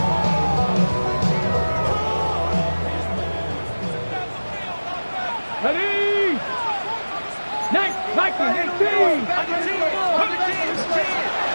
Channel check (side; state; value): both; inverted; correlation -1.00